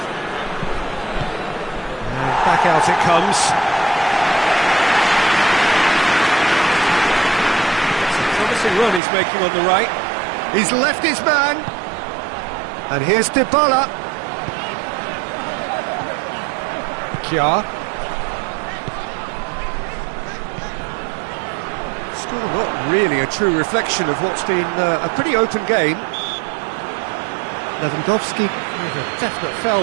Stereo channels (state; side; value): drops out; left; at 9.0 s